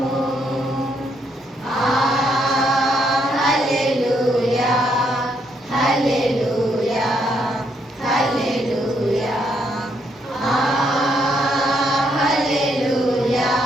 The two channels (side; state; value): both; normal; correlation 0.74